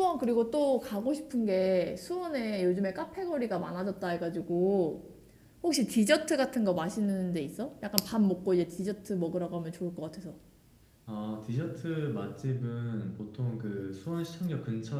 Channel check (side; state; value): both; identical; correlation 1.00